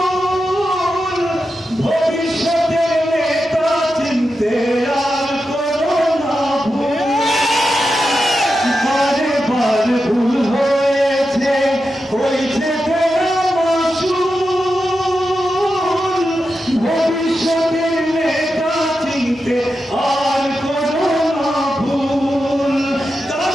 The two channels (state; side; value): normal; both; correlation 0.89